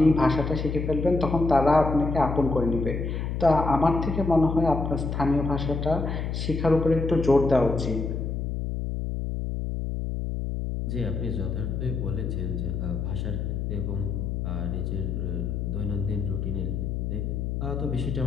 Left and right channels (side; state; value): left; noise; hum, 2 dB below the sound